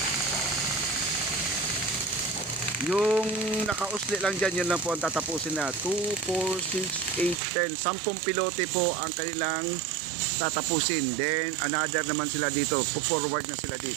Yung nakausli lang dyan, yun lang po ang tatapusin na. 2, 4, 6, 8, 10. 10 pilote po ang kanilang tatapusin. Then another naman sila dito. Forward na sila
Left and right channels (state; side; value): drops out; left; at 7.4 s